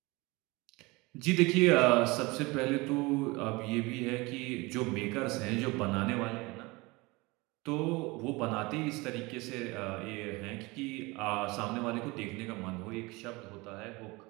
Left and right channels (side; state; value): left; quieter; 23.9 dB